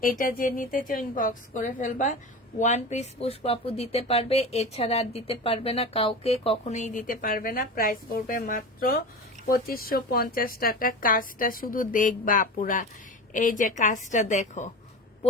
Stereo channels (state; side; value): normal; both; correlation 0.30